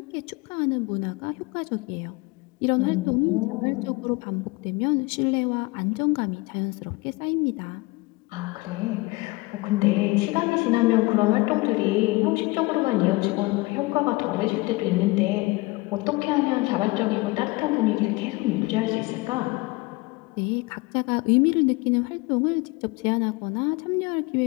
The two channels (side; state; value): right; quieter; 23.5 dB